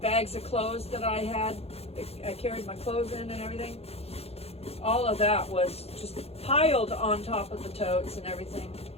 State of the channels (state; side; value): late; right; 0.29 ms